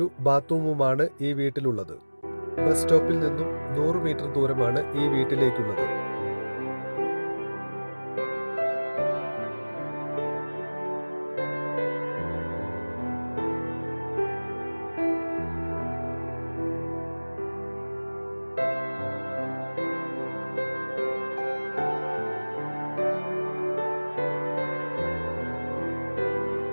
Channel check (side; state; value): both; inverted; correlation -1.00